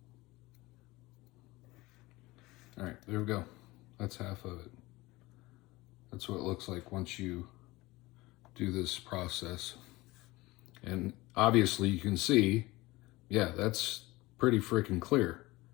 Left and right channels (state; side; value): quieter; right; 20.5 dB